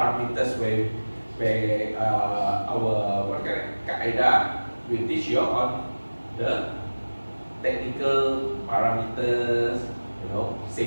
where our Qaeda will teach you on the technical parameters, you know,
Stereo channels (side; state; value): both; inverted; correlation -1.00